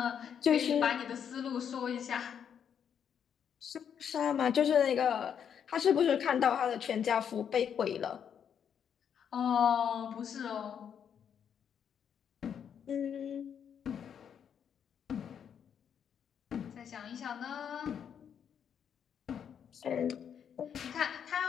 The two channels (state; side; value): quieter; right; 8.1 dB